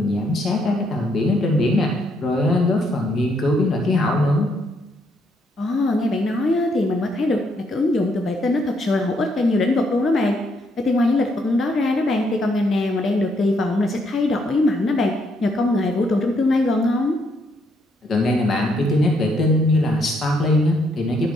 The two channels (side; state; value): both; normal; correlation 0.73